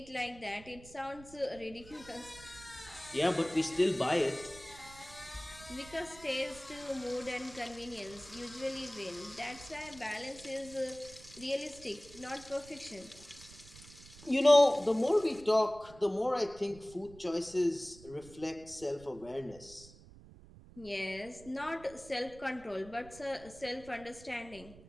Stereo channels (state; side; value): noise; right; rumble, 20 dB below the sound